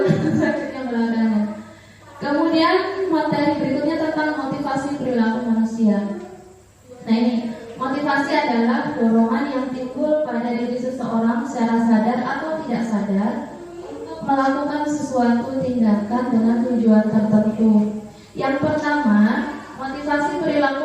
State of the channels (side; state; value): both; identical; correlation 1.00